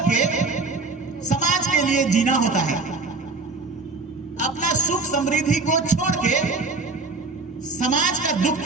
के समाज के लिए जीना होता है। अपना सुख समृद्धि को छोड़ के समाज का दुख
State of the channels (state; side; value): quieter; left; 3.7 dB